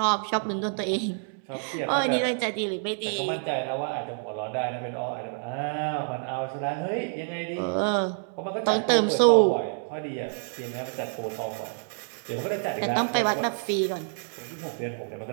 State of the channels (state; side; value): silent; left; digital silence